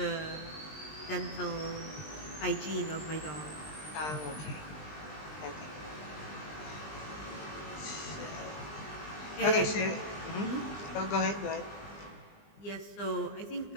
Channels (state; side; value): late; right; 20 ms